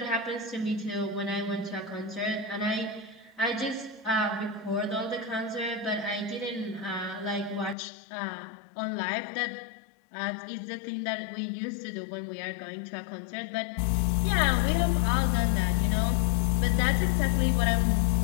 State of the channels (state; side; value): drops out; right; at 7.8 s